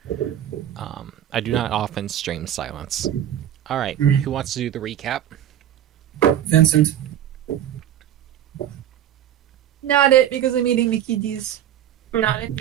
I do not often stream silence. All right, who wants to do the recap? Vincent. Not it, because I'm eating the kitties. Not it,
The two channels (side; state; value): left; quieter; 11.0 dB